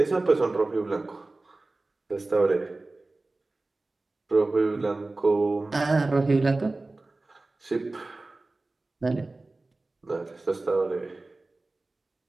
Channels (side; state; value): left; quieter; 3.1 dB